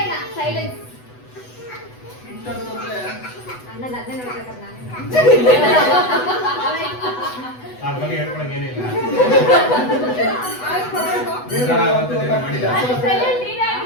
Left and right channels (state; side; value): late; right; 8.0 ms